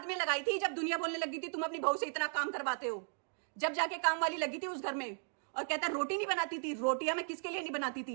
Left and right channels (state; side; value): silent; left; 54 dB below the other